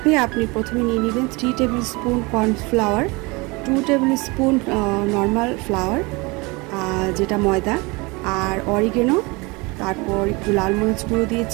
আপনি প্রথমে নিয়ে নেবেন 3 table spoon cornflour, 2 table spoon normal flower যেটা ময়দা, আর অরিগেনো, তারপর একটু লাল মরিচ গুঁড়ো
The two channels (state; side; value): quieter; left; 25.8 dB